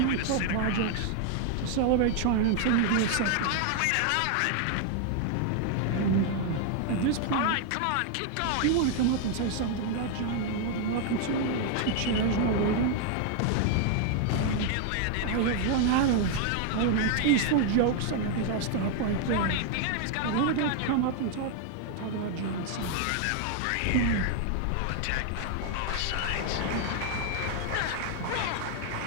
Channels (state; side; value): different; both; correlation 0.00